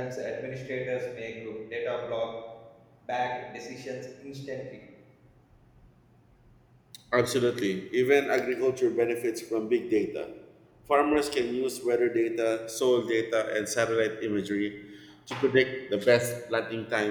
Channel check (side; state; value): both; identical; correlation 1.00